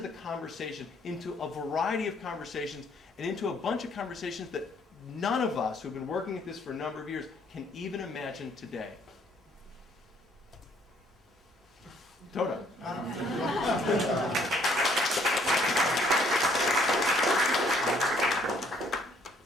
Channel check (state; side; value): normal; both; correlation 0.64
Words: the conversation, into a variety of conversations, and into a bunch of conversations that none of us who've been working at this for a number of years can even imagine today. Toda.